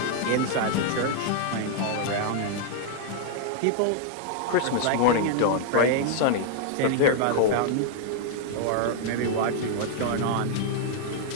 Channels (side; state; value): both; different; correlation -0.01